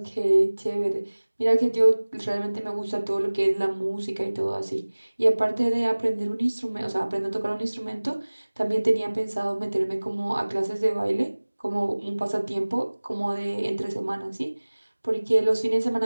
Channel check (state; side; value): inverted; both; correlation -1.00